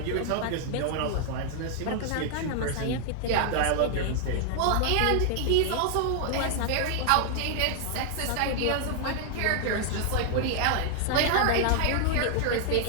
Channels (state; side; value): different; both; correlation 0.00